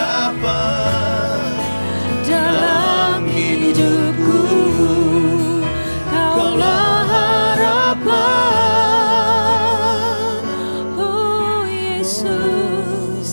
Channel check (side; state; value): both; inverted; correlation -1.00